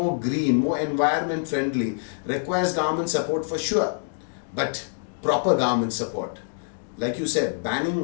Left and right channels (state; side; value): silent; right; digital silence